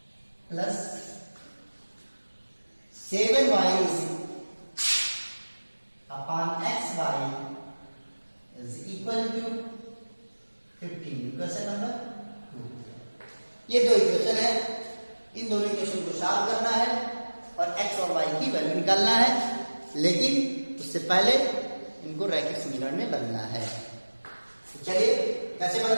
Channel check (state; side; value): inverted; both; correlation -1.00